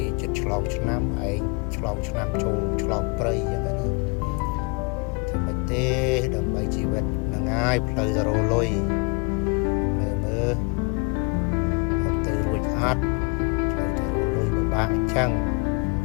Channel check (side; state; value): right; quieter; 33.3 dB